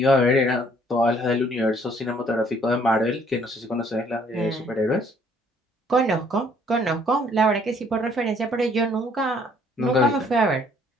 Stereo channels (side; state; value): both; normal; correlation 0.62